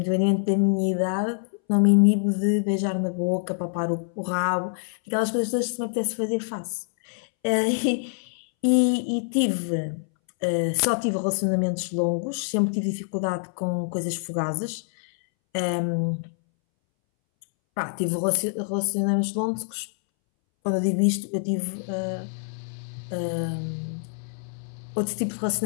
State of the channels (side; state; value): right; silent; 61 dB below the other